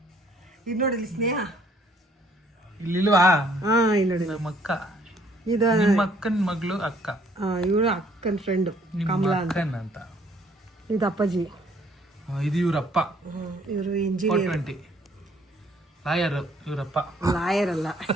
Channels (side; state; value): both; normal; correlation 0.62